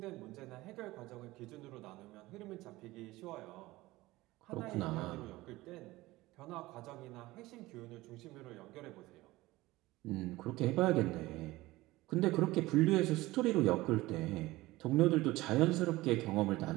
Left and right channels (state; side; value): quieter; left; 18.9 dB